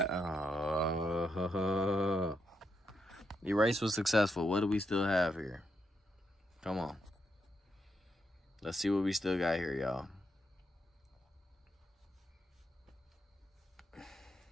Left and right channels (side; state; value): both; normal; correlation 0.81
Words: the race was successful. What do we still have here? Come on. Let's see what we still got here, y'all.